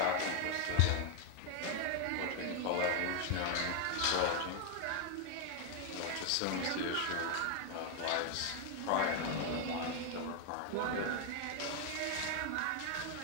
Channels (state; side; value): different; both; correlation 0.00